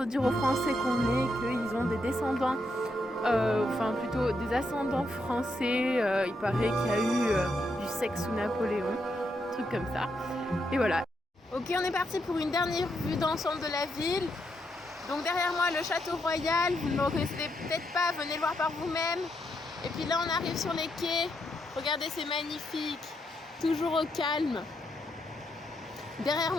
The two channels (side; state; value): both; normal; correlation 0.80